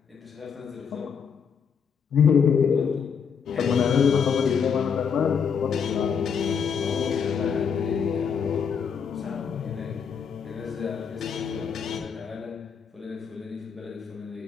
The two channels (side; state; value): right; quieter; 6.7 dB